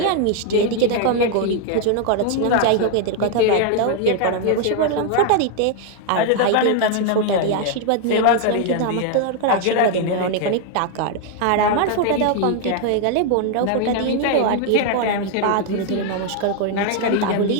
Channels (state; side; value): different; both; correlation 0.00